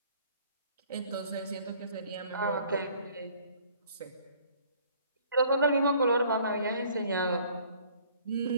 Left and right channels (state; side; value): inverted; both; correlation -0.56